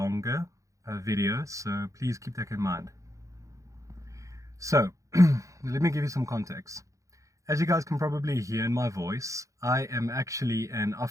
video, so please keep that in mind. So, let me give you some context. As you guys can probably hear in my voice, I am actually an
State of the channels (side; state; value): left; late; 0.15 ms